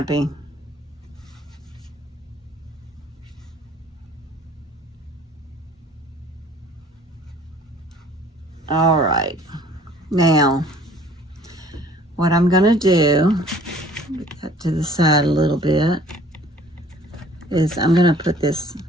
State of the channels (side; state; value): both; normal; correlation 0.53